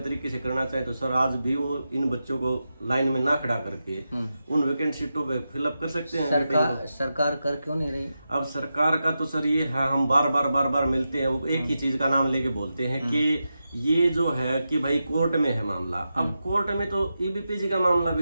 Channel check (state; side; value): inverted; both; correlation -0.89